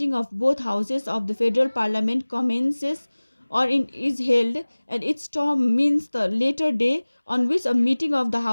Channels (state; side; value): inverted; both; correlation -1.00